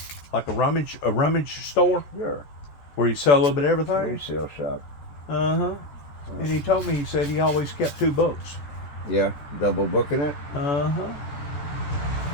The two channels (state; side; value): late; right; 14 ms